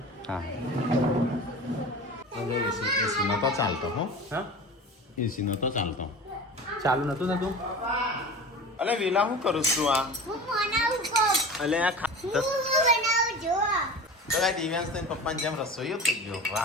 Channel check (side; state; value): both; normal; correlation 0.34